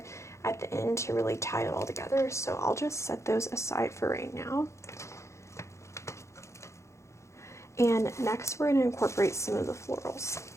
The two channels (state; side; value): late; right; 0.14 ms